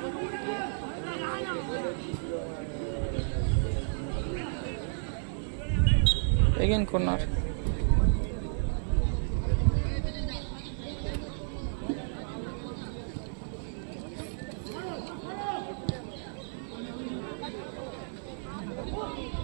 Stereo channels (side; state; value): left; silent; 56 dB below the other